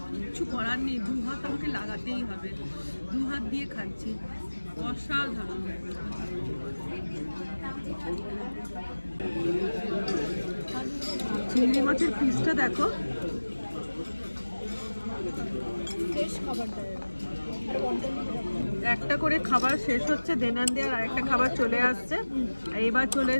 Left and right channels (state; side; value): inverted; both; correlation -1.00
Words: কিচ্ছু করার নেই, দু হাত আমাকে লাগাতেই হবে, দু হাত দিয়ে খাচ্ছি, অসাধারণ। চিংড়ি মাছের পিসটা দেখো, একটা করে খাবার শেষ হচ্ছে, দেনান দেওয়ার আরেকটা খাবার চলে আসছে। এইবার চলে